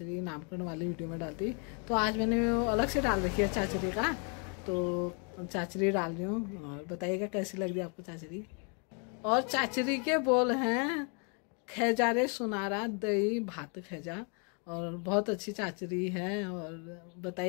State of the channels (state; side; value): quieter; right; 37.7 dB